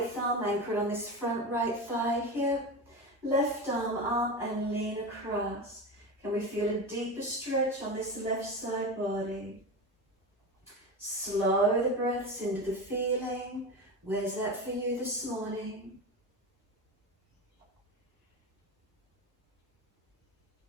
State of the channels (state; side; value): normal; both; correlation 0.23